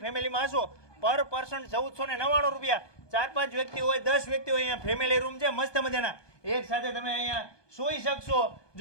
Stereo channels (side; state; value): right; late; 1.2 ms